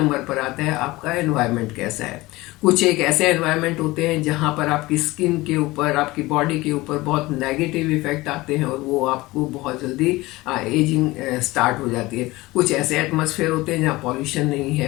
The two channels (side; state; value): right; quieter; 20.2 dB